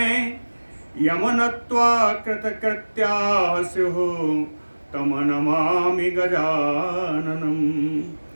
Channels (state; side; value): inverted; both; correlation -1.00